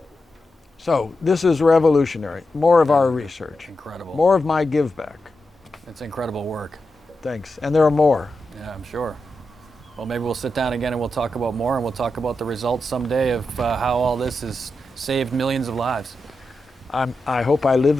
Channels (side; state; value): both; normal; correlation 0.89